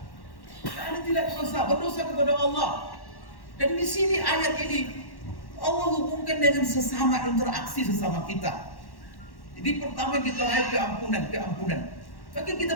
Anda tidak berdosa kepada Allah. Dan di sini ayat ini Allah hubungkan dengan sesama, interaksi sesama kita. Jadi pertama kita lihat keampunan. Maka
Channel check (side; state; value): right; late; 1.1 ms